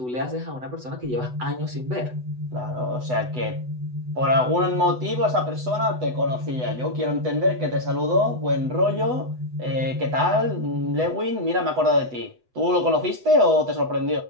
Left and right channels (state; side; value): late; left; 8.0 ms